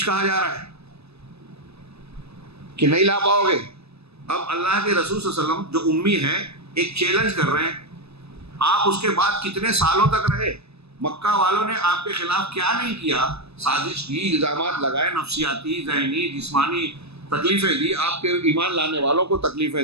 کہا جا رہا ہے کہ نہیں لا پاؤ گے۔ اب اللہ کے رسول صلی اللہ علیہ وسلم جو امی ہیں ایک چیلنج کر رہے ہیں، آپ اس کے بعد کتنے سالوں تک رہے؟ مکہ والوں نے آپ کے خلاف کیا نہیں کیا، سازش کی، الزامات لگائے، نفسیاتی، ذہنی، جسمانی تکلیفیں دی، آپ کے ایمان لانے والوں کو تکلیفیں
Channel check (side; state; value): left; late; 0.79 ms